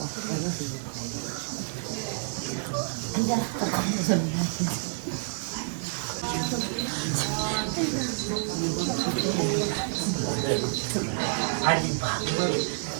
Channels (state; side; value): silent; left; 59 dB below the other